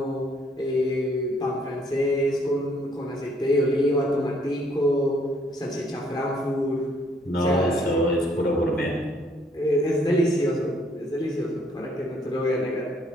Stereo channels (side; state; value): both; normal; correlation 0.65